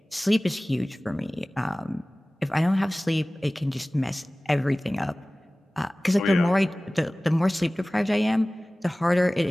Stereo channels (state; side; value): normal; both; correlation 0.98